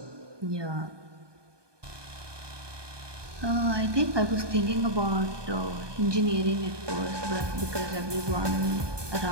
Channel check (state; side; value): late; left; 1.2 ms